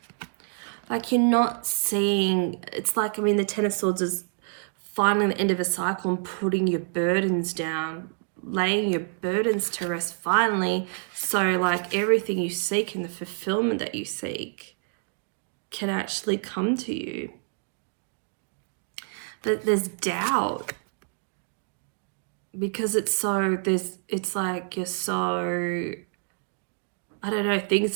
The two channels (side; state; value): left; silent; 60 dB below the other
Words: Like, you're not seeing, it's like, I mean, the Ten of Swords is finally the end of a cycle and putting your burdens down, laying your burdens to rest finally, so like everything you seek and the fulfillment that you seek can actually come to you. But there's doubt, because it's like you're so, I don't know, things